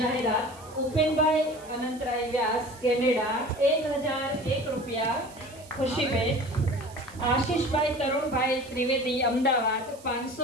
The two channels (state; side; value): noise; right; hiss, 22 dB below the sound